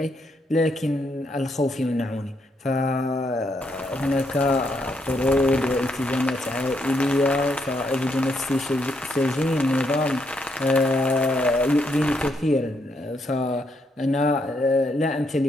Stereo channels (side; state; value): both; normal; correlation 0.77